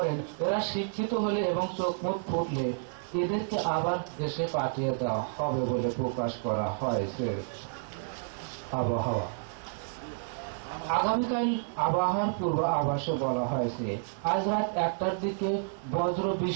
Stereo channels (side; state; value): left; silent; digital silence